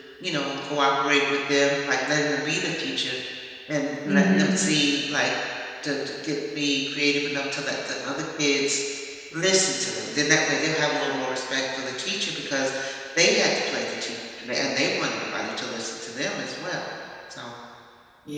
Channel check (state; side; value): identical; both; correlation 1.00